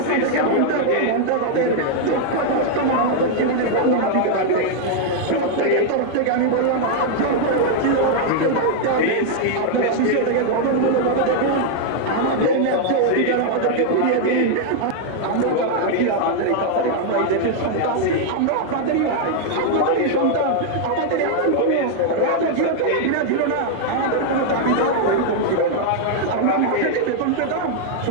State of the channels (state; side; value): different; both; correlation 0.00